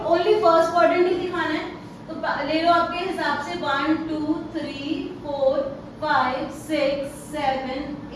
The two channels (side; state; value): both; identical; correlation 1.00